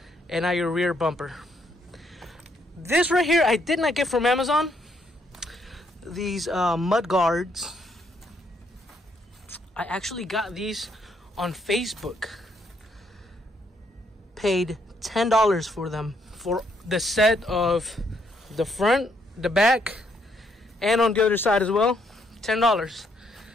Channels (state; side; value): normal; both; correlation 0.72